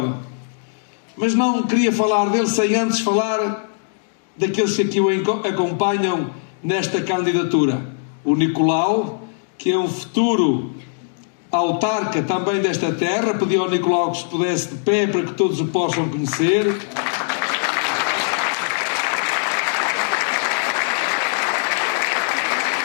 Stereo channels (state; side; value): silent; right; digital silence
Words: Mas não queria falar dele sem antes falar daqueles que aqui o acompanham nesta candidatura. O Nicolau, que é um futuro autarca também desta terra. Pedi ao Nicolau que se pudesse de pé para que todos o possam conhecer.